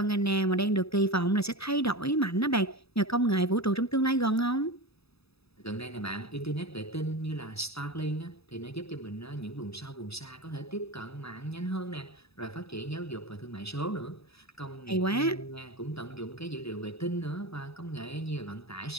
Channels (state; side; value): late; right; 0.78 ms